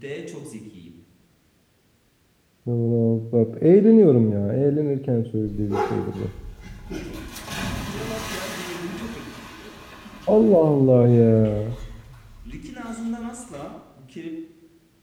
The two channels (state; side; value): identical; both; correlation 1.00